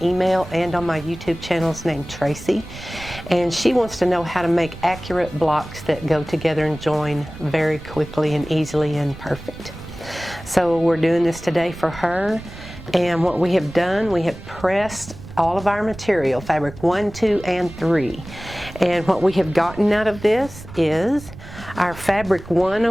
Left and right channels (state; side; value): noise; right; rumble, 15 dB below the sound